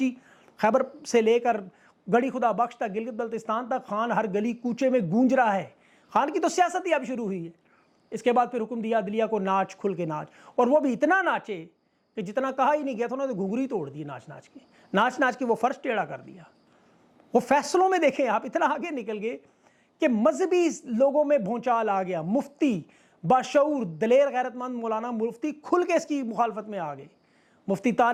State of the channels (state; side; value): identical; both; correlation 1.00